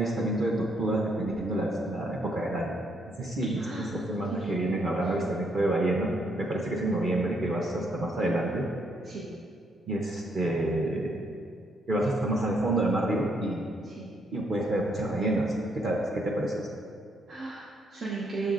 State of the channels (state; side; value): normal; both; correlation 0.73